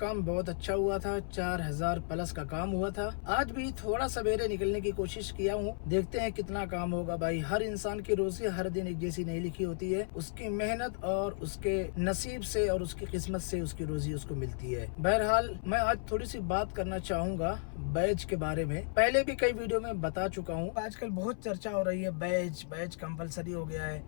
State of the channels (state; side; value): silent; right; 55 dB below the other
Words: बहुत अच्छा हुआ था, 4000 प्लस का काम हुआ था। आज भी थोड़ा सवेरे निकलने की कोशिश किया हूँ, देखते हैं कितना काम होगा भाई। हर इंसान की रोजी हर दिन एक जैसी नहीं लिखी होती है, उसकी मेहनत और उसके नसीब से और उसकी किस्मत से उसकी रोजी उसको मिलती है। बहरहाल मैं आज थोड़ी सी बात करना चाहूंगा बैज के बारे में। पहले भी कई वीडियो में बता चुका हूँ। आजकल बहुत चर्चा हो रही है बैज कंपलसरी हो गया है।